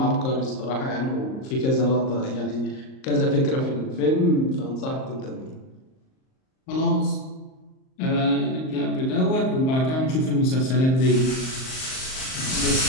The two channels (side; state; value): right; late; 38 ms